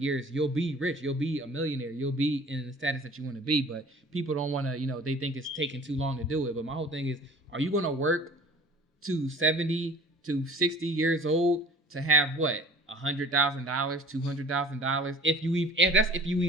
you'll be rich. You'll be a millionaire. You'll be in the status that you want to be. But people don't want to, they think it's taking too long to do it. But my whole thing is, are you going to work to 70 to 60 years old to have what? $100,000, $200,000? If you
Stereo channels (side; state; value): both; normal; correlation 0.46